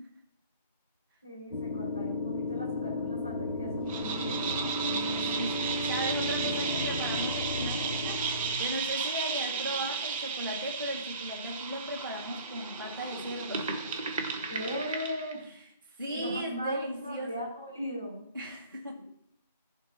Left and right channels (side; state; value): both; inverted; correlation -0.45